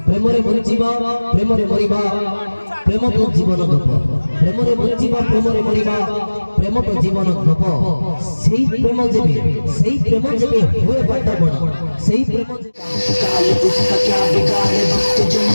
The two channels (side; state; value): both; inverted; correlation -1.00